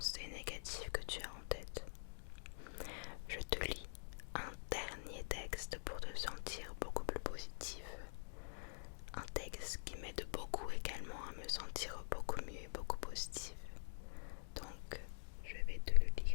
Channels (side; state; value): right; silent; digital silence